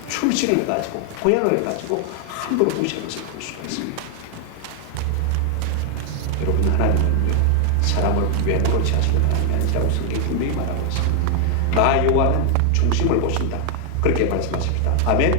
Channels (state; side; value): different; both; correlation 0.00